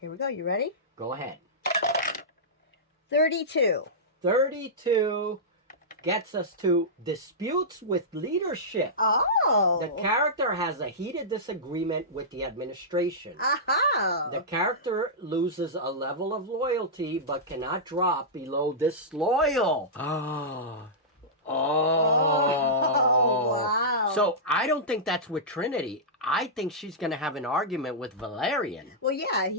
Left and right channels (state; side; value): normal; both; correlation -0.14